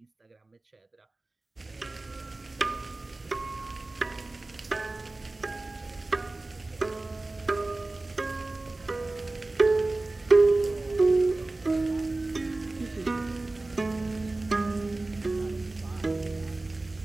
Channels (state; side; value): quieter; left; 3.1 dB